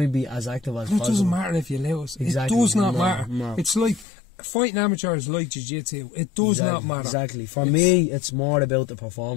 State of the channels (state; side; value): drops out; right; at 4.0 s